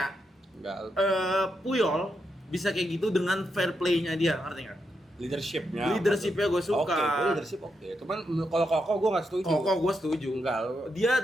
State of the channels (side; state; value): both; normal; correlation 0.83